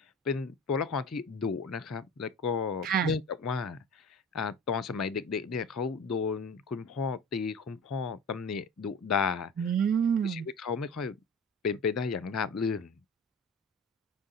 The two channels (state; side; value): normal; both; correlation 0.35